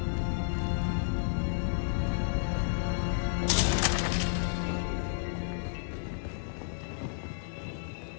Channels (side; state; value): right; silent; digital silence